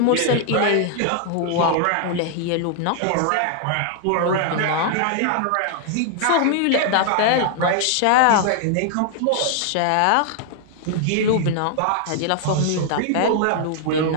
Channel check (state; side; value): different; both; correlation 0.00